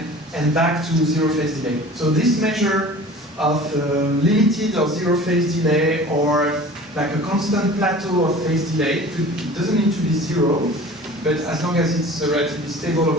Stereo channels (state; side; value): normal; both; correlation 0.42